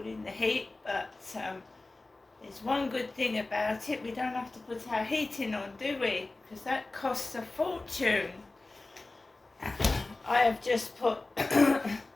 the heat, but there's one good thing about it: we don't have to put our heating on, do we? Because that costs a fortune. I have just put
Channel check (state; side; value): quieter; right; 3.2 dB